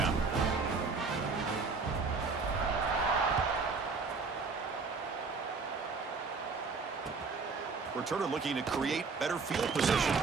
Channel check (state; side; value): quieter; left; 4.6 dB